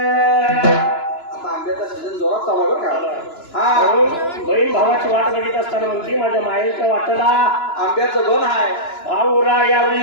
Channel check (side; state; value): right; late; 2.9 ms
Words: आता आंब्याचा सीझन जोरात चालू आहे बरं का. हा म्हणून बहीण भावाची वाट बघित असताना म्हणते माझ्या माहेरच्या वाटेला आंब्याचं बन आहे. भाऊरा या